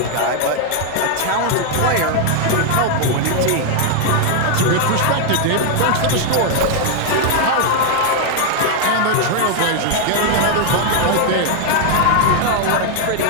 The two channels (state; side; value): different; both; correlation 0.00